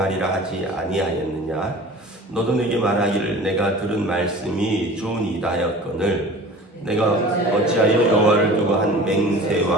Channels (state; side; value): normal; both; correlation 0.41